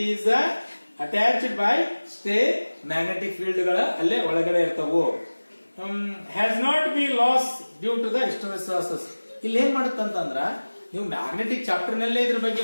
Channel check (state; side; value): inverted; both; correlation -1.00